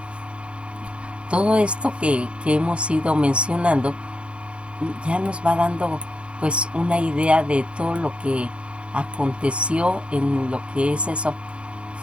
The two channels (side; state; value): left; late; 0.058 ms